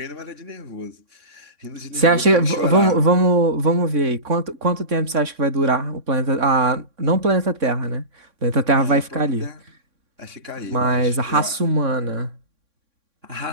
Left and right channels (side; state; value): left; late; 3.6 ms